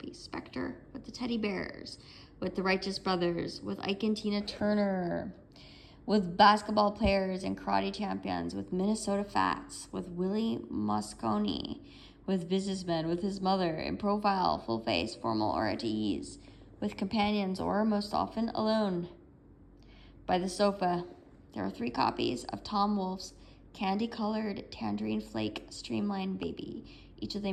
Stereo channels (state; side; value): identical; both; correlation 1.00